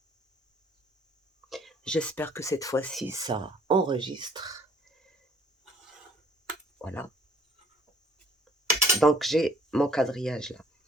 J'espère que cette fois-ci, ça enregistre. Voilà. Donc, j'ai mon quadrillage là.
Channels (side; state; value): both; normal; correlation 0.60